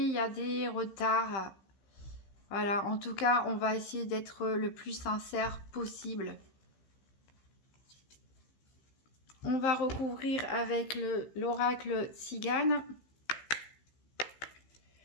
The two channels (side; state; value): right; late; 15 ms